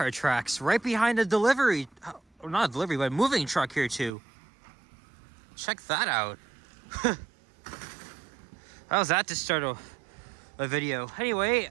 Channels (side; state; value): left; drops out; at 4.1 s